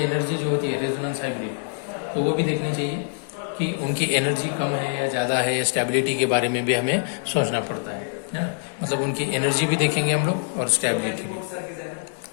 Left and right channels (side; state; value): right; silent; digital silence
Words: जो होती है, रेजोनेंस हाइब्रिड, तो वो भी देखनी चाहिए कि उनकी एनर्जी कम है या ज़्यादा है, या स्टेबिलिटी के बारे में भी हमें सोचना पड़ता है ना। मतलब उनकी एनर्जी भी देखेंगे हम लोग और स्टेबिलिटी भी,